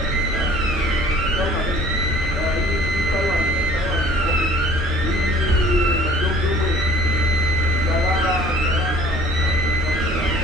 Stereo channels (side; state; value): both; normal; correlation 0.51